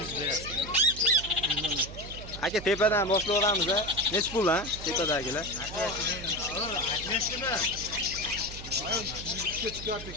berasiz. Aka, tepadan boshlaveramiz-a. Nech pul ha? Tepadagilar. Aytmaysizmi? 100 ga chiqyapti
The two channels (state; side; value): noise; right; hum, 12 dB below the sound